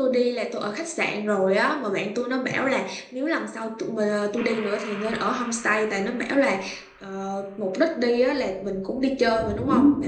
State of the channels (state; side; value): identical; both; correlation 1.00